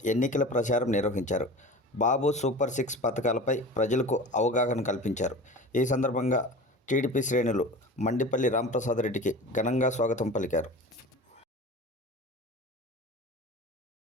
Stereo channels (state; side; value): normal; both; correlation 0.35